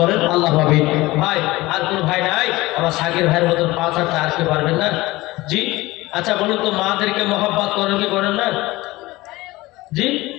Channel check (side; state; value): right; quieter; 19.7 dB